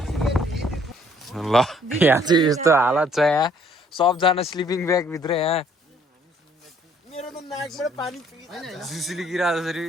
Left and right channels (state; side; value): normal; both; correlation 0.62